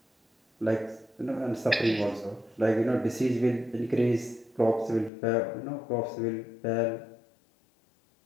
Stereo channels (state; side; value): drops out; right; at 5.1 s